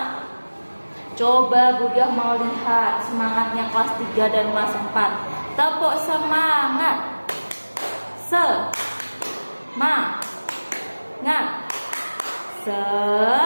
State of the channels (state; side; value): inverted; both; correlation -1.00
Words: Coba Budiah mau lihat semangatnya kelas 3 dan kelas 4. Tepuk semangat. Semangat.